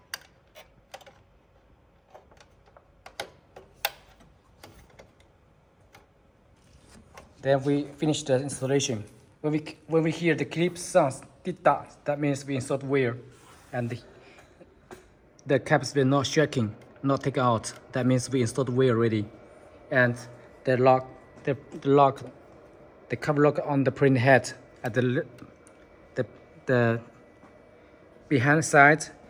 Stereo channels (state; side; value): identical; both; correlation 1.00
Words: Then we finish the installation. When we hear the clip sounds, that means we installed wear, and the caps will not shaking, not take out. That means we installed wear already. And the lock, the cover lock on the print head at the behind side